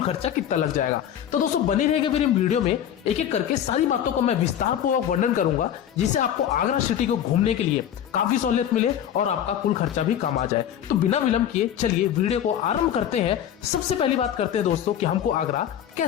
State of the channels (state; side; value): quieter; right; 10.1 dB